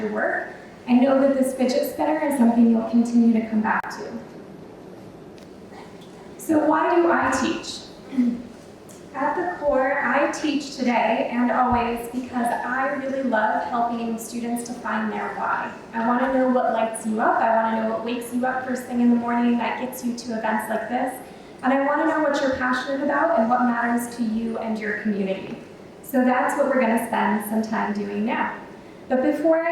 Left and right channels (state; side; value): identical; both; correlation 1.00